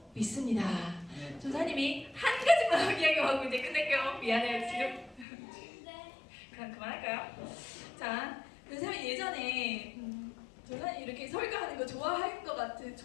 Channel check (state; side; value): drops out; right; at 5.2 s